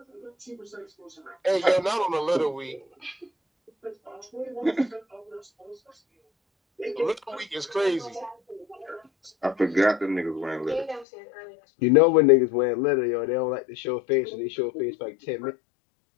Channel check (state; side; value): drops out; right; at 11.1 s